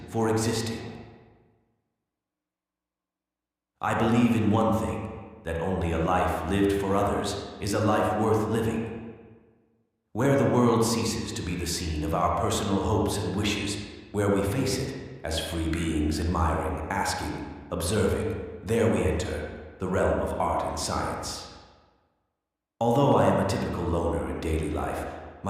for existing. I believe in one thing, that only a life lived for others is a life worth living. Where the world ceases to be the scene of our personal hopes and wishes, where we face it as free beings admiring, asking, observing, there we enter the realm of art and science. Although I am a typical loner in daily life,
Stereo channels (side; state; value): both; identical; correlation 1.00